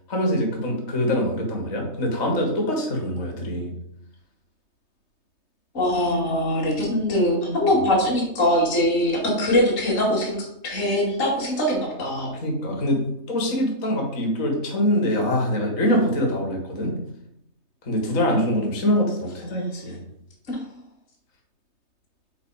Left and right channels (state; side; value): late; right; 3.2 ms